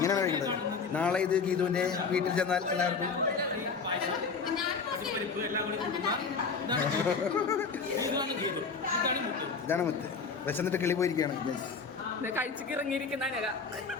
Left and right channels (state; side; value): quieter; right; 5.1 dB